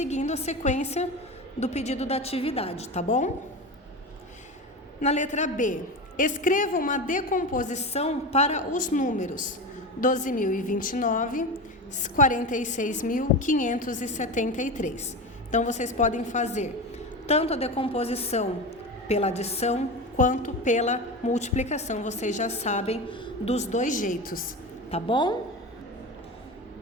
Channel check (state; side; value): normal; both; correlation 0.24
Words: a sequência do pedido da atividade, tá bom? Na letra B, escreva uma decomposição para os números 12.029, 46.573. Então, vocês podem fazer tanto a decomposição pela adição quanto pela multiplicação. Vocês já sabem dos dois jeitos, tá bom?